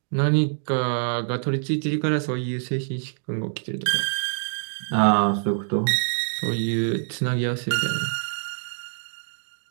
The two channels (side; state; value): left; silent; digital silence